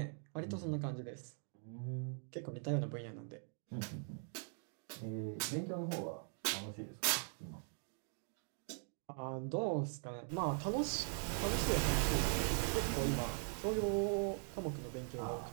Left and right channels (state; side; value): silent; left; 50 dB below the other